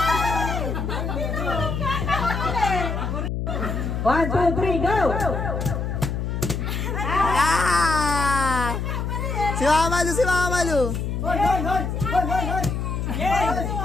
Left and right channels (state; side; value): noise; left; hum, 2 dB below the sound